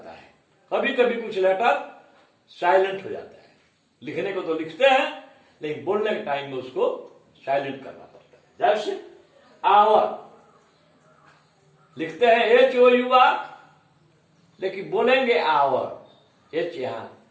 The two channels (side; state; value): both; identical; correlation 1.00